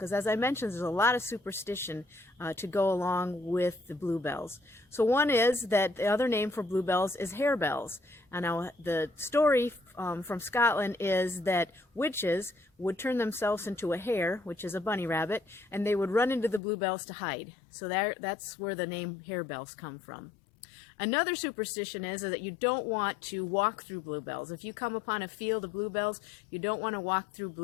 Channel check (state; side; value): drops out; right; at 16.6 s